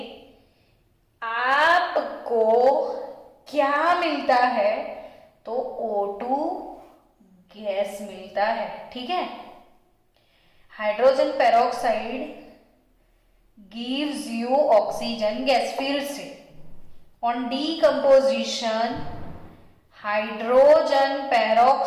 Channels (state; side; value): identical; both; correlation 1.00